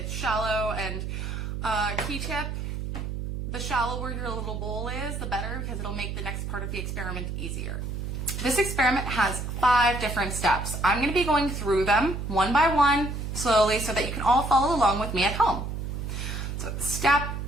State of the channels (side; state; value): right; noise; hum, 4 dB below the sound